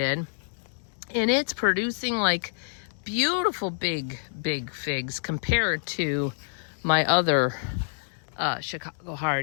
And it's producing like beautiful big figs compared to my other Chicago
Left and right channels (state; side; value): silent; right; digital silence